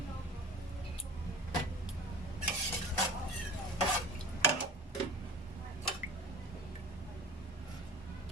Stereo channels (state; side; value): normal; both; correlation 0.40